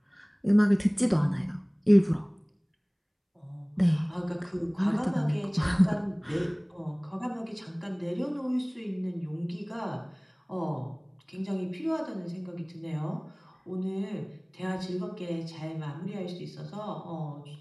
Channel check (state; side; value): identical; both; correlation 1.00